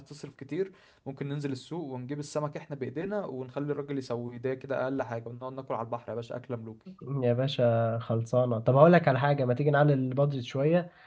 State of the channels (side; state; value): both; identical; correlation 1.00